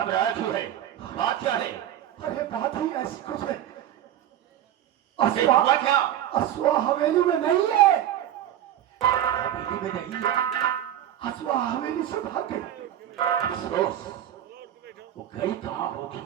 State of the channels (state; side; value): quieter; left; 11.5 dB